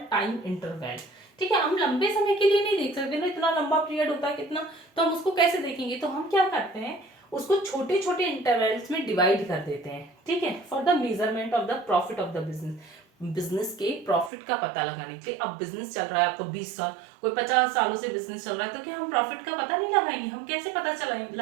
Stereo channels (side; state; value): left; drops out; at 14.3 s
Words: time interval, ठीक है। हम लंबे समय के लिए नहीं देख सकते ना, इतना लंबा पीरियड होता है कितना, तो हम उसको कैसे देखेंगे? तो हम क्या करते हैं, उसको छोटे छोटे इंटरवल्स में डिवाइड कर देते हैं, ठीक है, for the measurement of the profit of the business. Business के प्रॉफिट का पता लगाने के लिए। अब बिजनेस चल रहा है आपको 20 साल, कोई 50 सालों से बिजनेस चल रहा है, तो क्या हम प्रॉफिट का पता नहीं लगाएंगे? हम कैसे पता